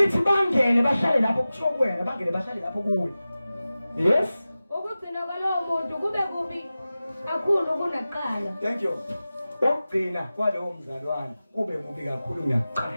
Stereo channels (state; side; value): inverted; both; correlation -0.96